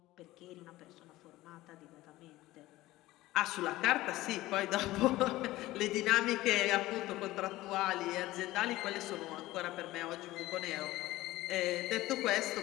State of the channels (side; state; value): right; quieter; 17.3 dB